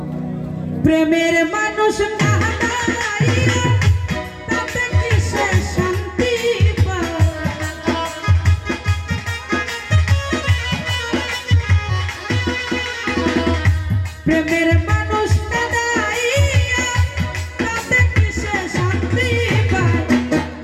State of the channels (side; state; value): both; identical; correlation 1.00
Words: প্রেমের মানুষ প্রেমের মানুষ কাঁদাইয়া তাতে কিসে শান্তি পায়